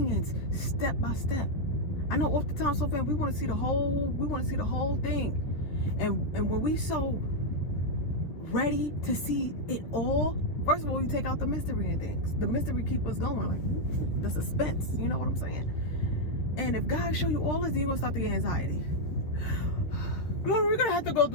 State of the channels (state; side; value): late; right; 13 ms